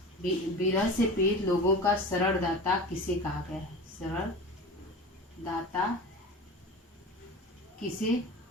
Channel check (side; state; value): both; normal; correlation 0.33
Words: विरह से पीड़ित लोगों का शरणदाता किसे कहा गया है? शरणदाता किसे